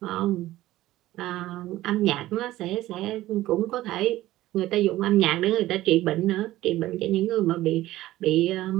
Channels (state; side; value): quieter; left; 15.8 dB